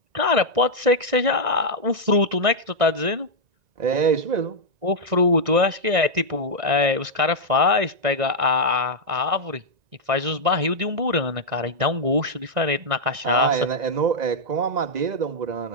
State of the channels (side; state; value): left; late; 1.9 ms